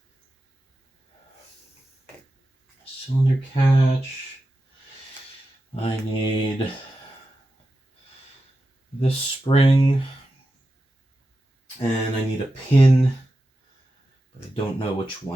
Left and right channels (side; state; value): both; normal; correlation 0.91